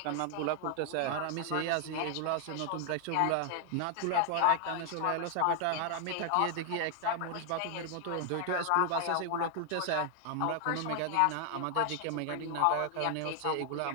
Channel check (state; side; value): different; both; correlation 0.00